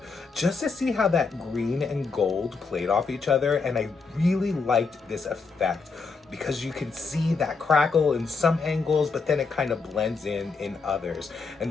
just to see how that green and gold played off each other, and I really liked this effect because you can see that crackle in some angles, but then it kind of blends in others. And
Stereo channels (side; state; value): right; quieter; 4.5 dB